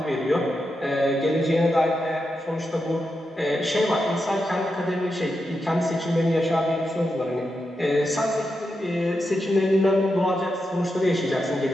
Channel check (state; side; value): normal; both; correlation 0.87